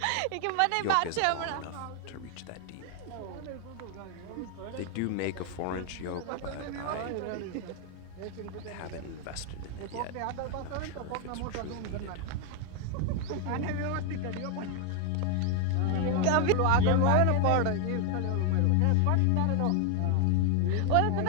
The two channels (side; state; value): both; different; correlation 0.00